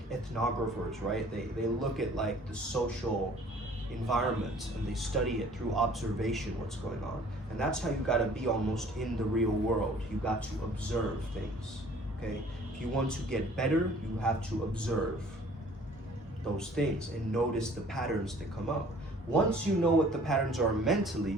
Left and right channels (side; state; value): both; normal; correlation 0.53